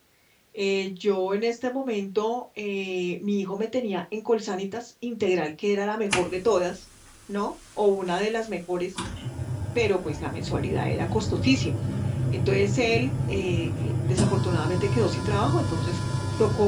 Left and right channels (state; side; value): identical; both; correlation 1.00